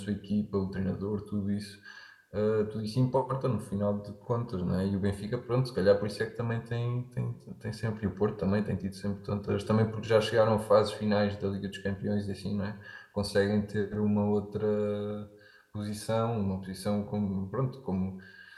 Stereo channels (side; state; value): both; identical; correlation 1.00